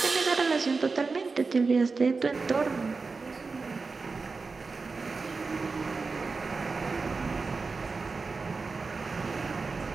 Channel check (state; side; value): quieter; left; 4.3 dB